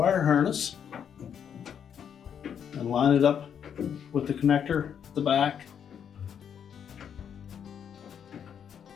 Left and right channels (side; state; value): right; quieter; 8.2 dB